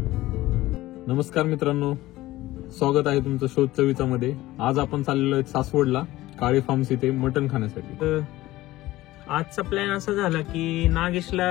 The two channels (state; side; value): quieter; right; 17.1 dB